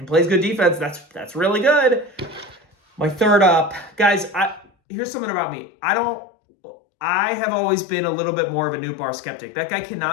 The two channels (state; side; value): drops out; right; at 4.7 s